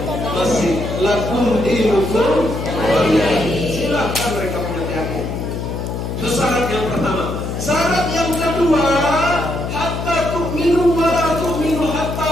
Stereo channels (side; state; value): left; noise; hum, 5 dB below the sound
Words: lakum dinukum waliyadin. Silakan mereka punya keyakinan. Itu syarat yang pertama. Syarat yang kedua, hatta tu'minu wa la tu'minu